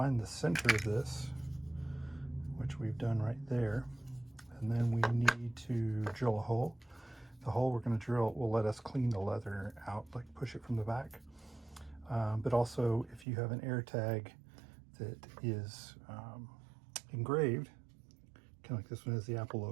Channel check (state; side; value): drops out; left; at 13.2 s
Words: the center of this, which we've done right there, and then we need to drill a hole. The hole we're going to drill will let us clean the leather out, like push it from the back. But also, if you have an AirTag that is engraved, kind of like this one has the Apple